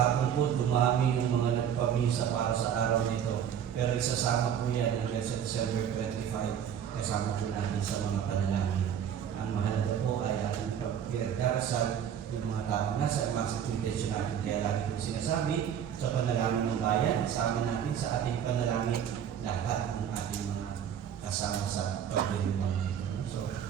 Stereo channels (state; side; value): quieter; left; 8.9 dB